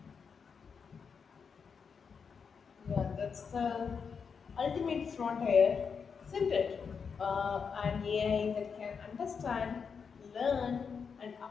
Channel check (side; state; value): right; quieter; 6.0 dB